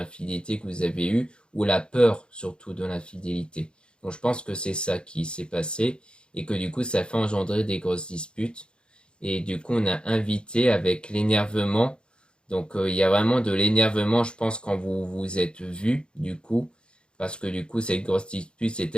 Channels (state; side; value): late; right; 0.053 ms